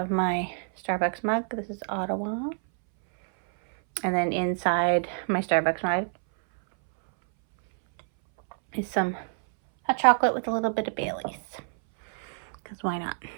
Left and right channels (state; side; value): silent; left; 60 dB below the other